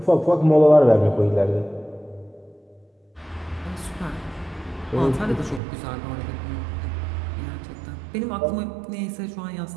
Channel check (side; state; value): left; drops out; at 5.6 s